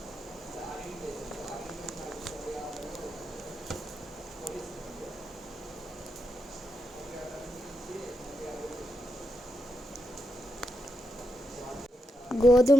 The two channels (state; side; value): normal; both; correlation 0.84